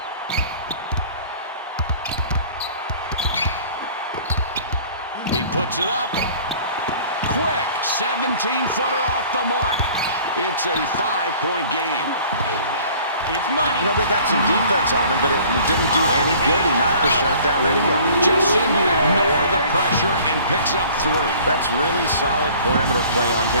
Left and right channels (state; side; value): inverted; both; correlation -0.50